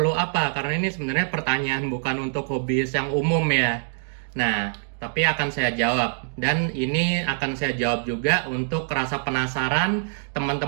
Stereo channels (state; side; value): silent; left; digital silence